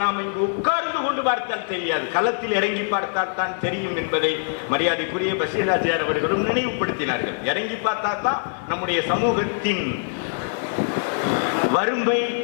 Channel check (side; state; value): right; silent; digital silence